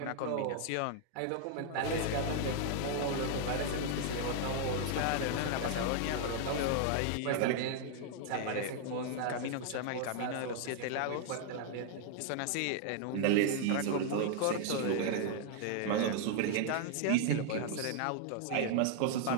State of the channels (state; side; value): different; both; correlation 0.00